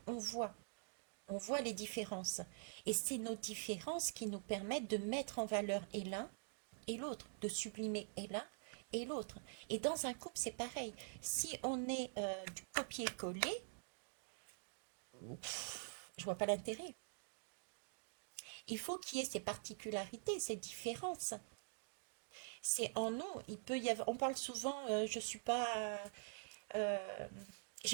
on voit. On voit les différences. Et c'est nos différences qui nous permettent de mettre en valeur et l'un et l'autre, de sublimer et l'un et l'autre. Et dans un couple, c'est pareil. Si on est du copier-coller, je vois pas l'intérêt. Il faut qu'il y ait ces particularités, ces différences. C'est en nous. Il peut y avoir. On parle souvent. Je suis pas. euh,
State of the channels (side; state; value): left; silent; digital silence